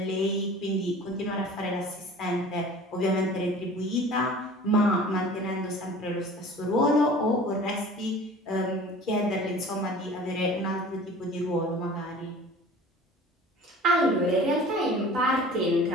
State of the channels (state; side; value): normal; both; correlation 0.44